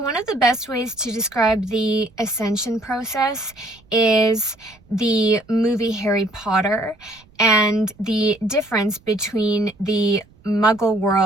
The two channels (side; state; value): right; noise; rumble, 29 dB below the sound